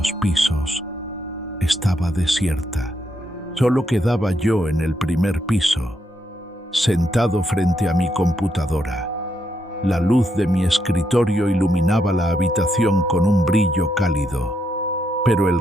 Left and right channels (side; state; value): both; normal; correlation 0.79